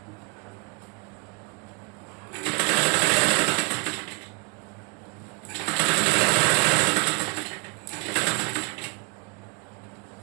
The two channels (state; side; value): quieter; left; 31.1 dB